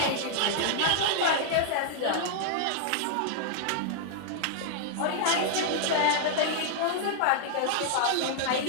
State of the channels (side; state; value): both; different; correlation -0.01